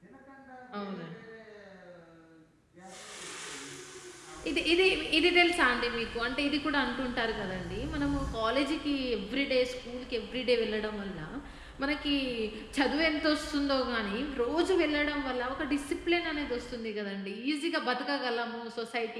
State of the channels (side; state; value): both; identical; correlation 1.00